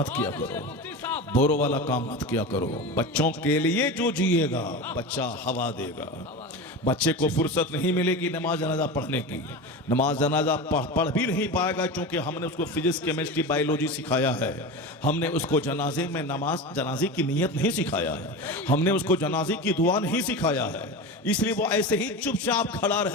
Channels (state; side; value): normal; both; correlation 0.26